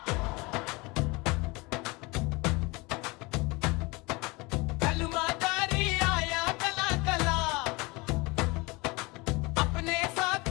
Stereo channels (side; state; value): right; quieter; 25.3 dB